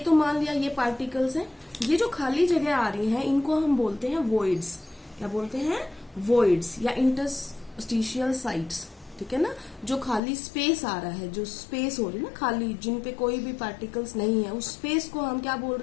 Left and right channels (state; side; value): drops out; right; at 10.2 s